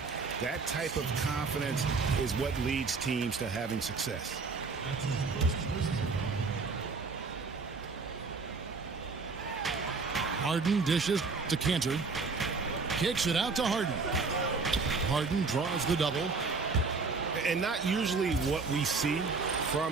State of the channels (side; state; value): left; quieter; 4.4 dB